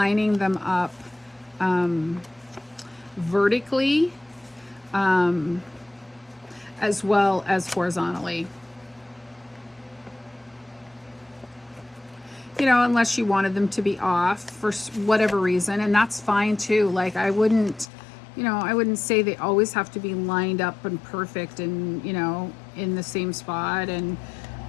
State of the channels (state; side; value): drops out; right; at 17.9 s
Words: them up vertically as well as horizontally. You know, unless you wanted them to be off for whatever reason, and that's fine too. Like I wouldn't say they always have to be lined up and perfect and, you know, in the same spot and